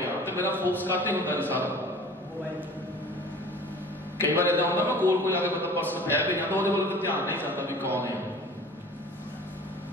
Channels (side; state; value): both; normal; correlation 0.43